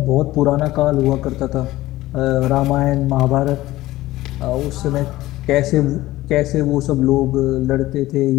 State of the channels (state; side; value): quieter; right; 16.9 dB